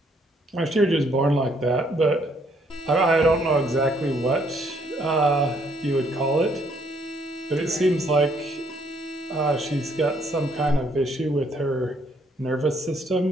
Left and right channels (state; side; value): normal; both; correlation 0.68